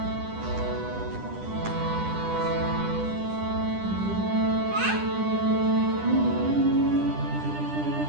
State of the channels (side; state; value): left; late; 10 ms